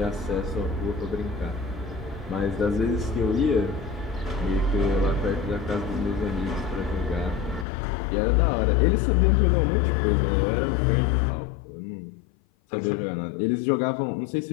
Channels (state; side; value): drops out; right; at 7.7 s